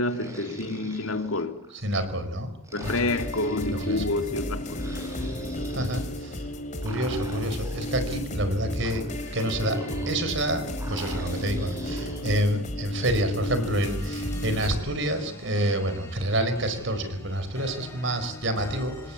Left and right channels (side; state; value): both; normal; correlation 0.33